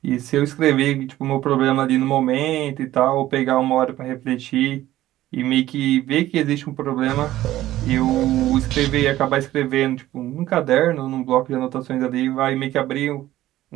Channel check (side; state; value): left; quieter; 14.7 dB